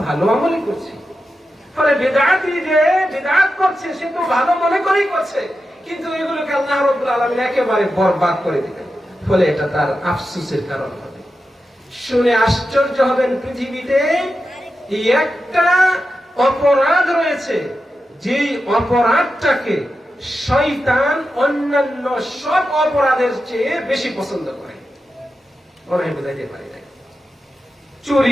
ভালো আমলই করছি। ফলে বিদআতি যে বিদআত করছে সে তো ভালো মনে করেই করছে, কিন্তু এগুলোকে আল্লাহ রাব্বুল আলামিন একেবারে বরবাদ করে দিবেন। ফলে এটা তার আফসোসের কারণ হবে। শুনে আশ্চর্য হবেন, পৃথিবীতে একটা অপরাধ রয়েছে, যেই অপরাধটাকে শয়তান অন্যান্য সব অপরাধের চেয়ে বেশি পছন্দ করে। মনে হয় বুঝাইতে পারি না।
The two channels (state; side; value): normal; both; correlation 0.90